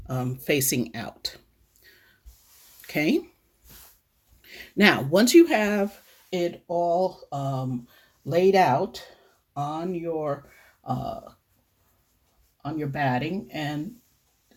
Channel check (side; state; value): both; identical; correlation 1.00